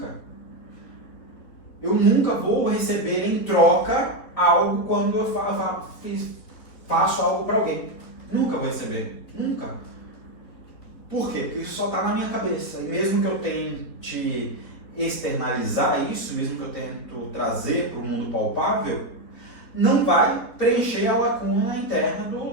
Eu nunca vou receber em troca algo quando eu faço algo para alguém. Nunca vou receber. Nunca. Por quê? Porque isso só está na minha cabeça. E mesmo que eu tente externalizar isso, mesmo que eu tente trazer para o mundo palpável, não vai preencher a lacuna interna do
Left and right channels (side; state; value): right; late; 4.3 ms